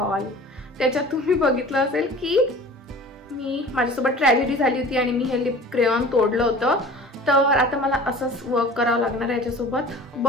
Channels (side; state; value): both; normal; correlation 0.42